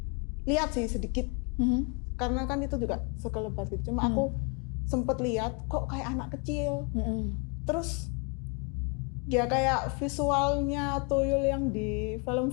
lihat sih sedikit, karena kan itu juga sekelebat gitu. Cuma aku sempet lihat kok kayak anak kecil. Terus dia kayak visualnya tuyul yang di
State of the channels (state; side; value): quieter; right; 34.7 dB